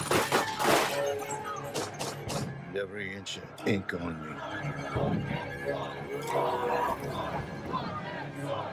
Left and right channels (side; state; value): both; identical; correlation 1.00